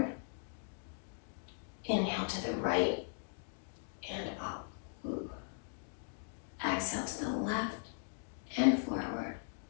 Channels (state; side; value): silent; right; digital silence